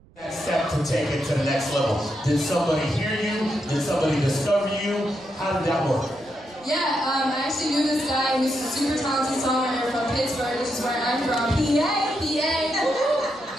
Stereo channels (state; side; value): noise; right; rumble, 28 dB below the sound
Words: That step to take it to the next level. Did somebody hear you? Did somebody discover you? How did that work? Yeah, I actually knew this guy who's a super talented songwriter from Pittsburgh, which is where I'm from. PA.